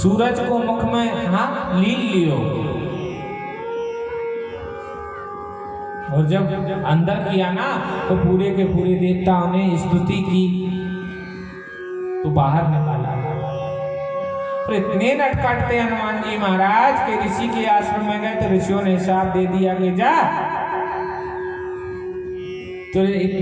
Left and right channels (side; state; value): both; identical; correlation 1.00